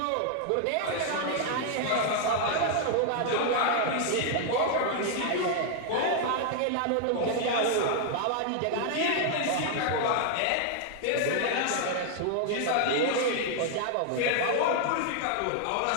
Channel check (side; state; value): both; different; correlation 0.00